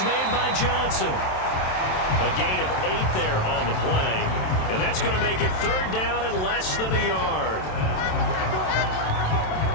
made by Johnson. A gain of 8 there on the play. And that's going to make it 3rd down and less than a yard.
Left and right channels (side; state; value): right; late; 27 ms